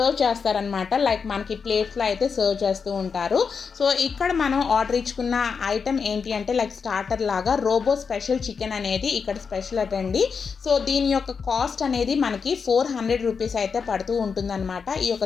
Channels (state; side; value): quieter; right; 5.7 dB